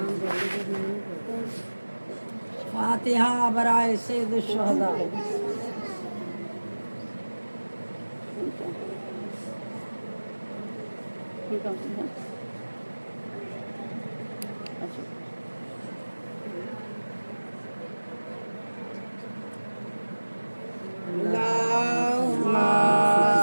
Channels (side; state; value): both; inverted; correlation -1.00